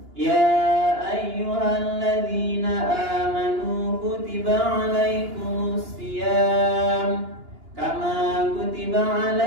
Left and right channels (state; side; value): late; left; 2.9 ms